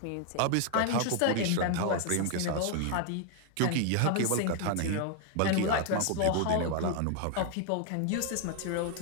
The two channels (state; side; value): different; both; correlation 0.00